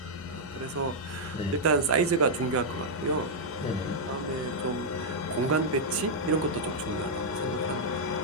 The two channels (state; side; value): normal; both; correlation -0.05